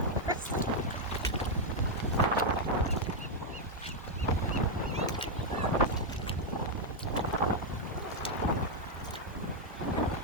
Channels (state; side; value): normal; both; correlation -0.01